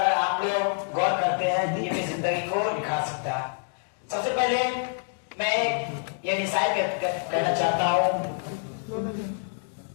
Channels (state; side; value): silent; right; 60 dB below the other